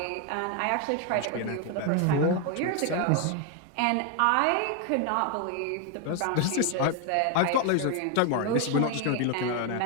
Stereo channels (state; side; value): different; both; correlation 0.01